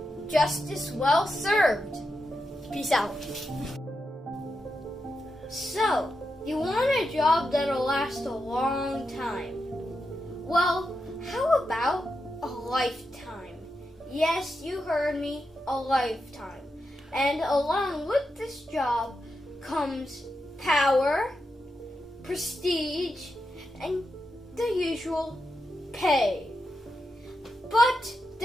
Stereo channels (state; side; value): normal; both; correlation 0.87